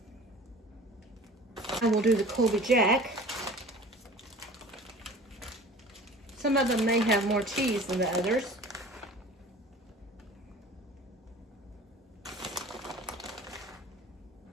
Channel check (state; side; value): normal; both; correlation 0.43